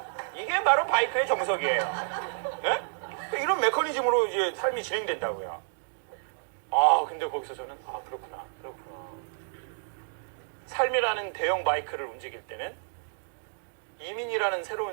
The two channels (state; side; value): silent; left; digital silence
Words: 이게 바로 바이크의 정석이에요. 예? 이런 메커니즘으로 이제 삶이 진행된다고요. 아, 근데 거기서 저는 그렇구나. 삶이라는 대형 바이크를 움직일 때는 이민이라는